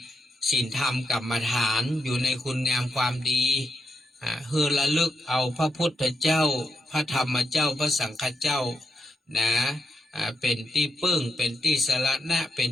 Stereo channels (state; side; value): normal; both; correlation 0.83